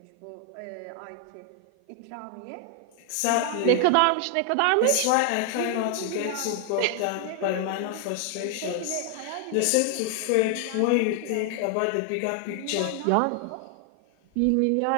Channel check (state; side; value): different; both; correlation 0.00